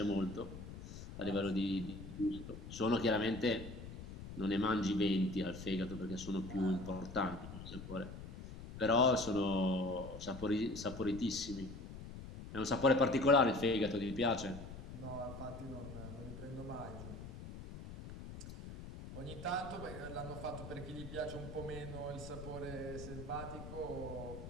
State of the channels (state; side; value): noise; left; rumble, 11 dB below the sound